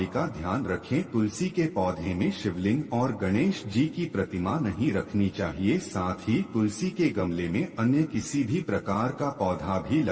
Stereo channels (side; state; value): both; identical; correlation 1.00